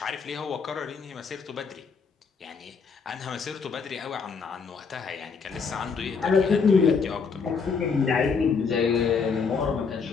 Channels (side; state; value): right; quieter; 5.4 dB